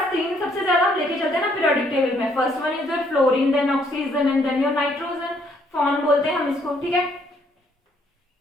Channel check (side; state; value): both; normal; correlation 0.67